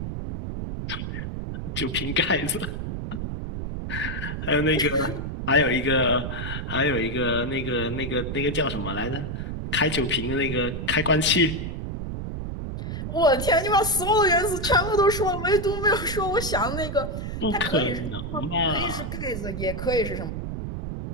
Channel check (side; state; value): right; noise; rumble, 5 dB below the sound